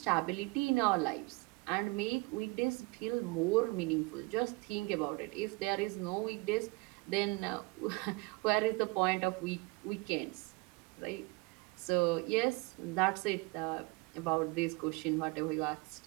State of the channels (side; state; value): left; quieter; 25.9 dB